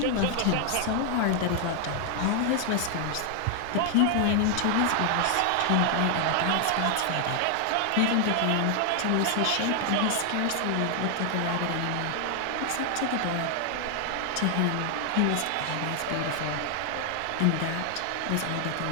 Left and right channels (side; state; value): both; different; correlation 0.00